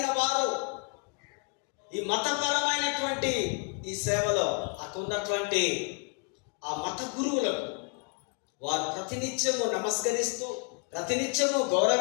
వారు ఈ మతపరమైనటువంటి ఈ సేవలో అక్కడున్నటువంటి ఆ మత గురువులకు వారు ప్రతినిత్యము నమస్కరిస్తూ, ప్రతినిత్యము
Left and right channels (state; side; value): quieter; right; 37.6 dB